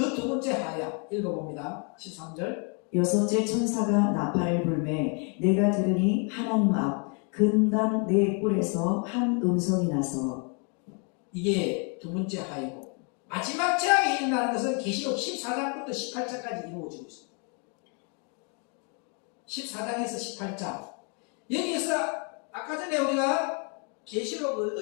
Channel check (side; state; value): right; quieter; 37.4 dB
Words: 두 번째 하야. 읽어봅니다. 13절. 여섯째 천사가 나팔을 불매 내가 들으니 하나님 앞 근단 네 뿔에서 한 음성이 나서. 이게 두 번째 하이고, 마지막 재앙이 일어나는 것은 계시록 14장부터 18장까지 이루어지고 있습니다. 14장에서 18장. 여기에서 아까 전에 우리가 계시록